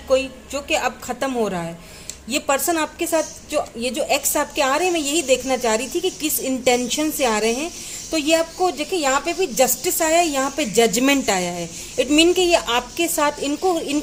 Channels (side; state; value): both; identical; correlation 1.00